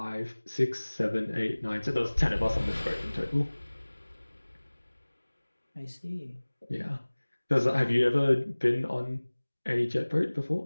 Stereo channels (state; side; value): inverted; both; correlation -1.00